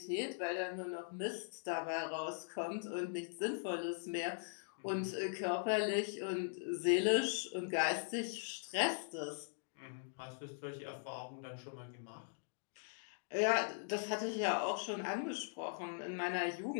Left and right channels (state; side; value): silent; right; digital silence